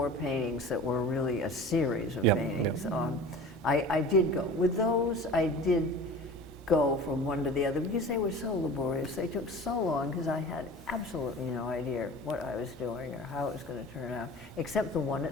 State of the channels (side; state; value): both; normal; correlation 0.39